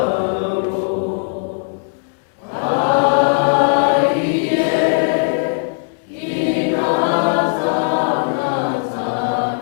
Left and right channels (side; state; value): right; silent; digital silence